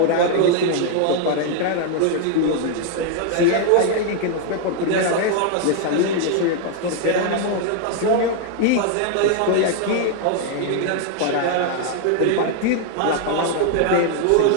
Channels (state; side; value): different; both; correlation 0.00